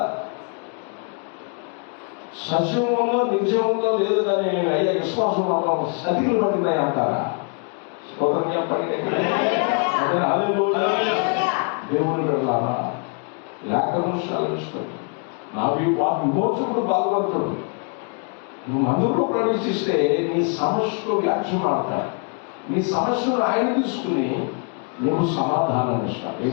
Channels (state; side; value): quieter; right; 39.0 dB